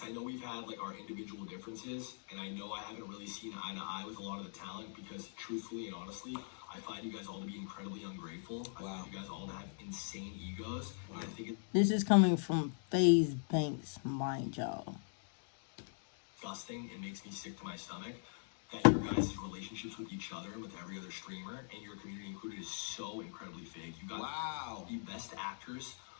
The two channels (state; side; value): silent; right; digital silence